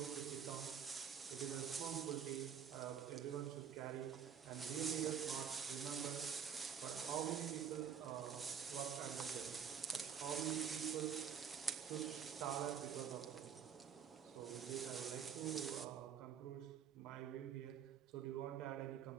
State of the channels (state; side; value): quieter; left; 7.9 dB